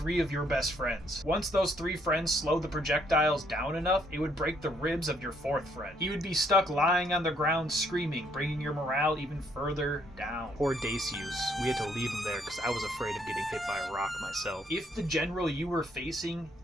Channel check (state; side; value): normal; both; correlation 0.69